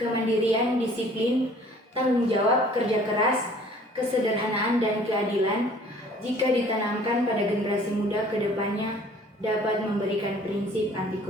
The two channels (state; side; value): normal; both; correlation 0.53